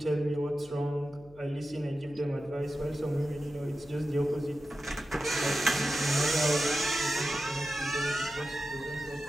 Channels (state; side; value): noise; left; hum, 24 dB below the sound